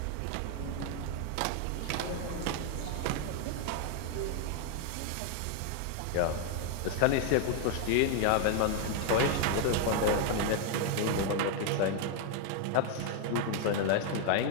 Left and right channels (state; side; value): different; both; correlation 0.01